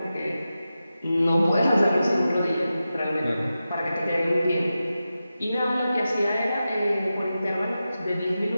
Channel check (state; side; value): inverted; both; correlation -0.92